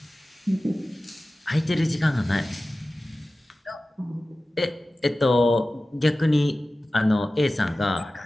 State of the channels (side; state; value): both; normal; correlation 0.96